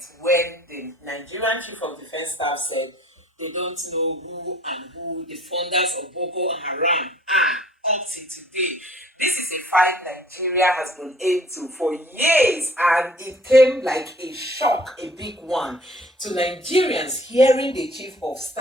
when the Nigerian Chief of Defence Staff said they don't know who the funders of Boko Haram are up to today. This is a fight Nigeria has been into for years, and it came like a shock, a big one, to Nigerians hearing the Chief of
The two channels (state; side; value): normal; both; correlation 0.55